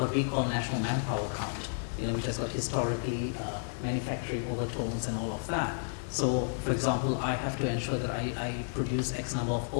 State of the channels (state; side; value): silent; right; digital silence